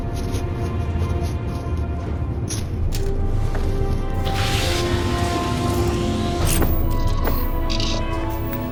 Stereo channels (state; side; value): identical; both; correlation 1.00